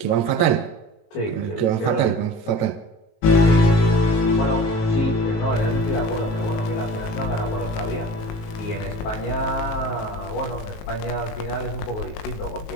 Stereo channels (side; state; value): right; late; 19 ms